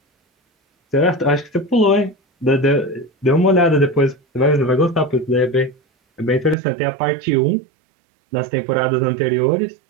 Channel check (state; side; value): drops out; left; at 6.6 s